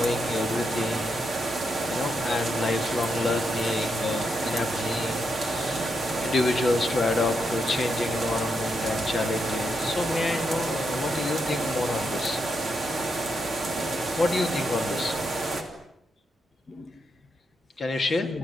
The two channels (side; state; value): both; normal; correlation 0.82